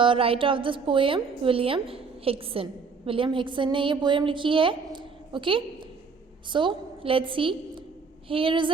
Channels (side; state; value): left; quieter; 5.0 dB